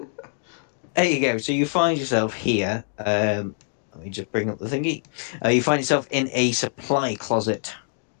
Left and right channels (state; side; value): silent; right; digital silence